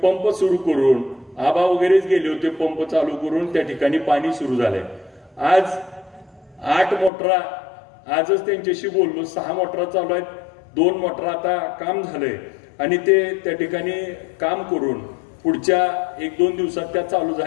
सुरू करून आबा वगैरेच गेले होते, पंप चालू करून त्या ठिकाणी पाणी सुरू झालंय. आज 8 मोटरा, आजच त्यांच्याशी बोललो, 6 मोटरा चालू आहेत, 2 मोटरा आता काम झालंय आणि ते त्या ठिकाणी काम करून पुढच्या 1-2 दिवसात त्या चालू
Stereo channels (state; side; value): drops out; right; at 7.1 s